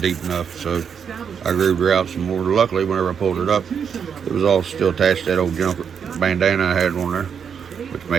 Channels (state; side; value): quieter; left; 7.1 dB